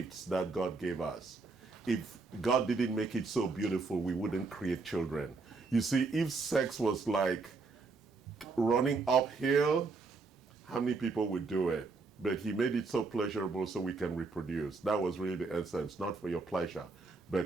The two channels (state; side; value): quieter; left; 4.0 dB